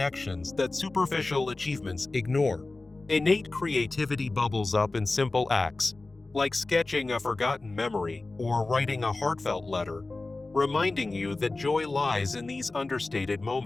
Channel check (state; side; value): quieter; right; 3.2 dB